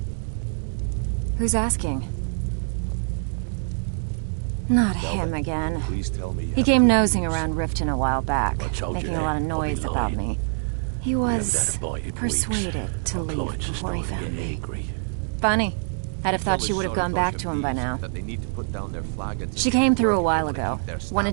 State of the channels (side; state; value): left; silent; digital silence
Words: Who's asking? Not him again. Please tell me. He came nosing around Riften a while back, told you making a that. lot of I'll be noise about lying. me. He was haven't had a bite in persuaded to leave Clients are before he starting to found get me. angry. Funny. I'd have thought she Fellas would have sorry gone about back your to him by thieves, now. that they need to put down their flagons She and came keep through a working while when they ago. keep their Wanted to